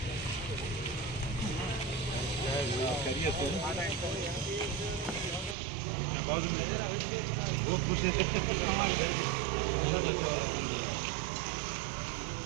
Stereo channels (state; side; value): drops out; left; at 5.6 s